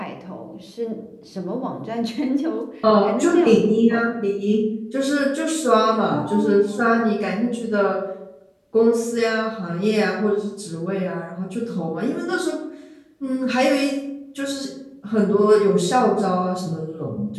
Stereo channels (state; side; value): identical; both; correlation 1.00